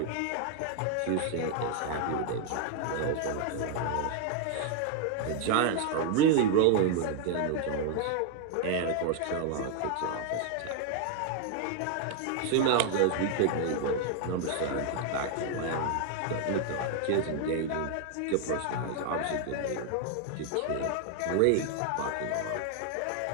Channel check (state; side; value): different; both; correlation 0.00